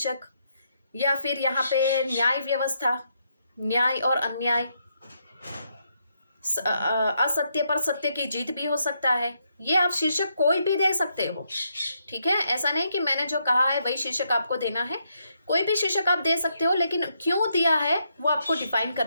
या फिर यहाँ पे न्याय व्यवस्था, न्याय और अन्याय, असत्य पर सत्य की जीत भी हो सकता है। ये आप शीर्षक कोई भी दे सकते हो, ठीक है। ऐसा नहीं कि मैंने जो कहा है वही शीर्षक आपको देना है, कोई भी शीर्षक आप दे सकते हो, लेकिन क्यों दिया है वो आपको डिफाइन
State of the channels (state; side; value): inverted; both; correlation -0.78